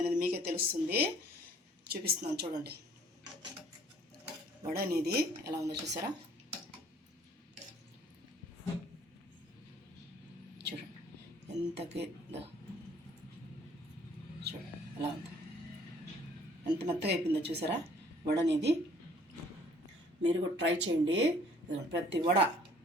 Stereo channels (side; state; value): both; normal; correlation 0.57